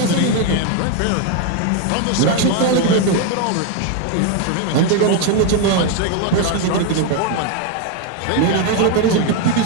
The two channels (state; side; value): different; both; correlation 0.01